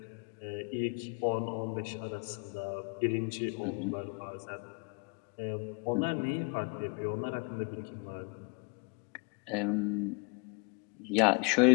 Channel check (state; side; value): quieter; right; 33.0 dB